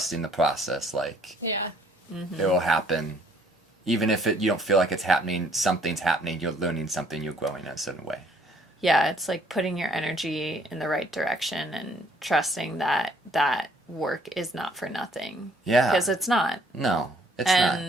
the process. Like, Yeah. it will happen. Even if you don't feel like it's happening, something's happening. You're learning something. You're growing in a certain way. Yeah, it's like putting your energy in the right direction and trusting that that work is not for nothing. Yeah. Because it's not. No, it's not.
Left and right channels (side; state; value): both; normal; correlation 0.63